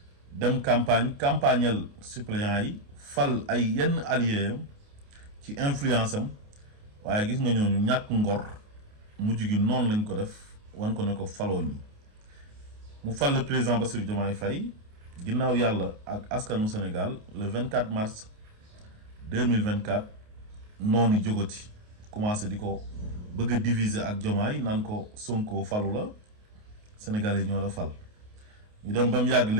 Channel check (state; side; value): late; left; 28 ms